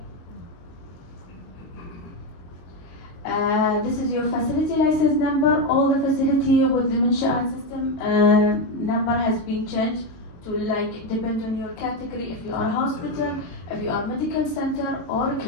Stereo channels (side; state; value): right; late; 22 ms